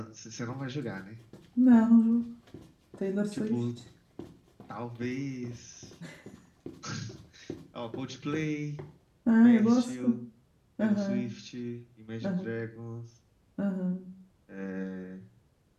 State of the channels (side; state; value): both; identical; correlation 1.00